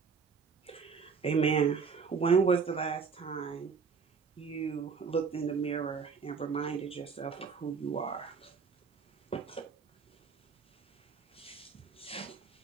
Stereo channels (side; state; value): left; quieter; 5.6 dB